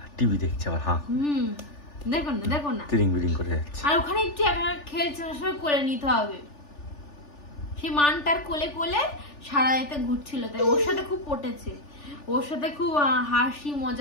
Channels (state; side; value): late; right; 3.4 ms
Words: টিভি দেখছে আবার। হ্যাঁ দেখো না দেখো না, তিরিং বিরিং করে যাচ্ছে। আর ওখানে একটু একা খেলছে, সবাই করে নিতে হবে। সেই মানটার কোলে কোলে সারা এতে ঘুরছিল, তাই ওর সাথে খুব পটেছে, ওর সাথে খুব হাসি